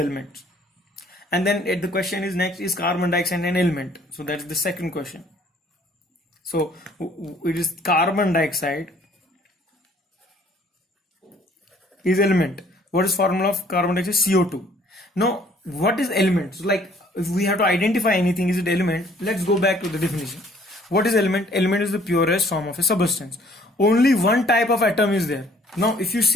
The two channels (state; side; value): normal; both; correlation 0.58